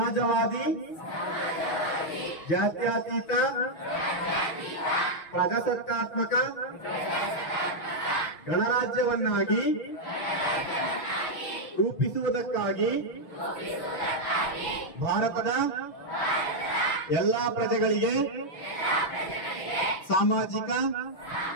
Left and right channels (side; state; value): right; late; 6.2 ms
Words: ಜಾತ್ಯತೀತ, ಪ್ರಜಾಸತ್ತಾತ್ಮಕ ಗಣರಾಜ್ಯವನ್ನಾಗಿ ರೂಪಿಸುವುದಕ್ಕಾಗಿ ಭಾರತದ ಎಲ್ಲಾ ಪ್ರಜೆಗಳಿಗೆ ಸಾಮಾಜಿಕ,